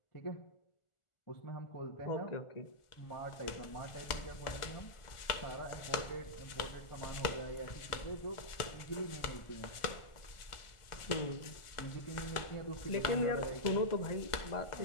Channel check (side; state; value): right; late; 1.4 ms